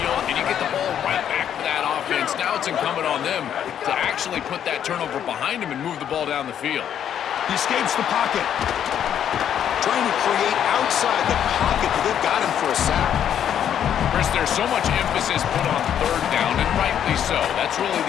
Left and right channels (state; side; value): quieter; right; 9.5 dB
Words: and you get the ball right back to that offense. Now it's incumbent on them to actually put that turnover behind him and move the ball down the field. He escapes the pocket. Trying to create outside the pocket, but they've got him for a sack. Chris, there's so much emphasis put on third down, and rightly so. That's really